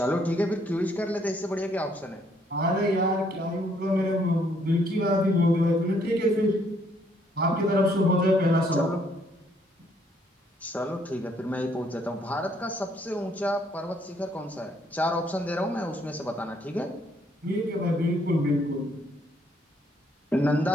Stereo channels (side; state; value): both; normal; correlation 0.68